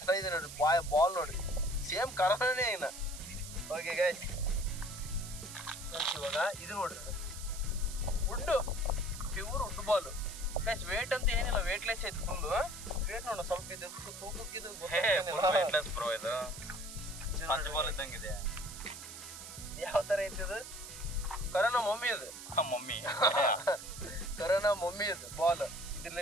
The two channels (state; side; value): noise; right; hiss, 11 dB below the sound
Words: ಇದೆ ನೋಡ್ರಿ ಬಾಲ್ ನೋಡ್ರಿ, ಸೇಮ್ ಕರೋನಾನೇ ಏನ. ಓಕೆ ಗೈಸ್, ಇವಾಗ ಇದು ನೋಡ್ರಿ, wood, pure wood ball guys. Weight ಅಂತ ಏನಿಲ್ಲ, ವೇಟ್ಲೆಸ್ ಐತಿ ಫುಲ್. ವೇಟ್ ನೋಡ ಸ್ವಲ್ಪ ಇದು ತೂಕಕ್ಕಿದು ವೇಟ್ಲೆಸ್ ಬ್ರೋ. ಇದು ಪಂಚ್ ಬಾಲ್ ಇದ್ದಂಗಿದೆ. ಯಾವ ತರ ಐತಿ ಇದು? ಕರೋನಾ ಮಮ್ಮಿ ಇದು, ಮಮ್ಮಿ ಕರೋನಾ ಮಮ್ಮಿ ಇದು ಬಾಲ್.